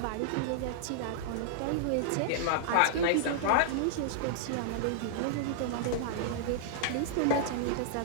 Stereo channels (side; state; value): both; different; correlation -0.01